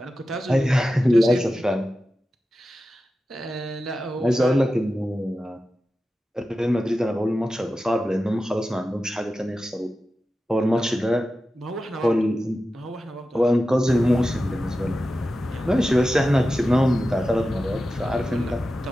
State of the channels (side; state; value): both; normal; correlation 0.93